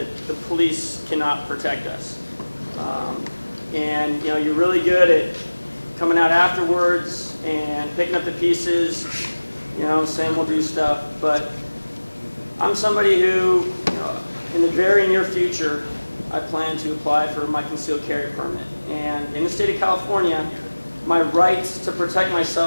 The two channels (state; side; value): inverted; both; correlation -1.00